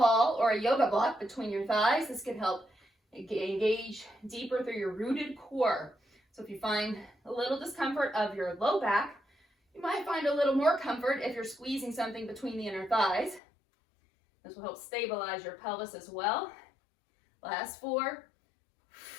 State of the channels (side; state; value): right; drops out; at 13.4 s